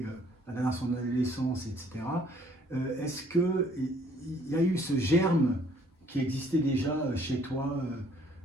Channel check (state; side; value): normal; both; correlation 0.61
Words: dans son adolescence, etc., est-ce qu'il y a eu ce germe qui existait déjà chez toi,